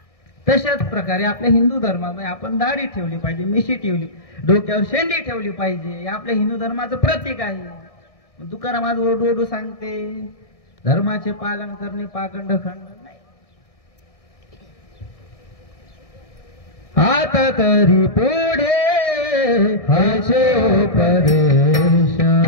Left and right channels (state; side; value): late; right; 1.6 ms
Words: तशाच प्रकारे आपल्या हिंदू धर्मामध्ये आपण दाढी ठेवली पाहिजे, मिशी ठेवली, डोक्यावर शेंडी ठेवली पाहिजे. हे आपल्या हिंदू धर्माचं प्रतीक आहे. तुकाराम आज ओरडू सांगते, धर्माचे पालन करणे पाखंड खंड नाही. आता तरी पुढे हाचे उपदेश,